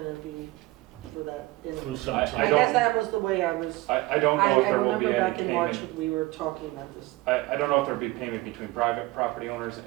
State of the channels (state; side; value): quieter; left; 20.1 dB